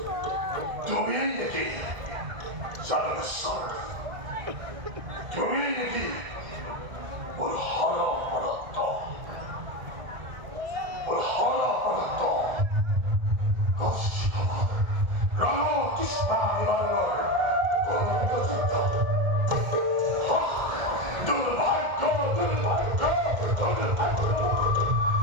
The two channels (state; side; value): late; left; 1.7 ms